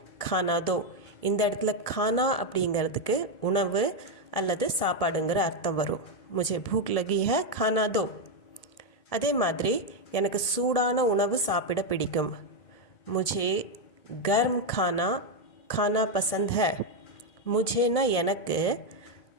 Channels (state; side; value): late; right; 1.7 ms